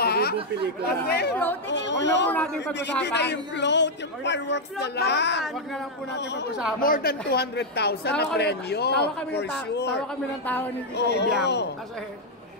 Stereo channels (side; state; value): both; normal; correlation -0.02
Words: Kasi, huwag na po natin pag-usapan. Hindi na yung float, yung fireworks na lang. Huwag na lang po natin pag-usapan. More than 200,000 na premyo, for sure. Tawa kami ng tao ni Tita Ibiang. Kasi,